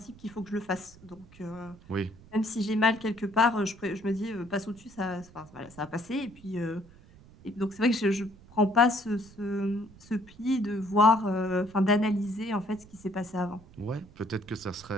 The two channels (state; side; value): noise; right; rumble, 22 dB below the sound